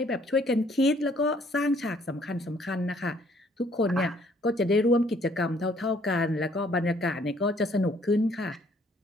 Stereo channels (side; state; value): both; normal; correlation 0.63